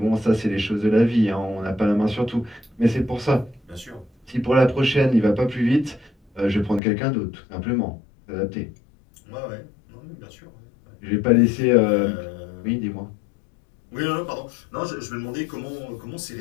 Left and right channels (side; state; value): right; drops out; at 6.8 s